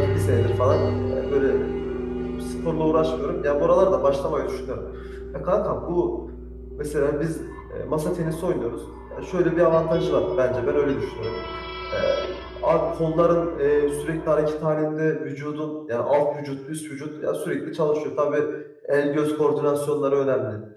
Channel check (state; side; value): identical; both; correlation 1.00